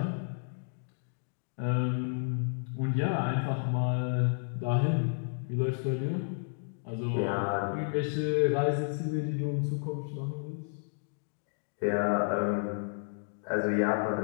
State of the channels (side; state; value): right; silent; digital silence